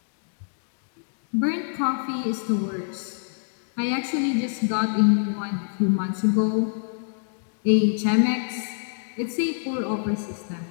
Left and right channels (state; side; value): silent; right; digital silence